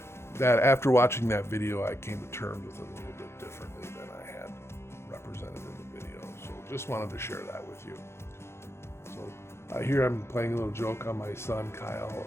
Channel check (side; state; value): right; late; 0.12 ms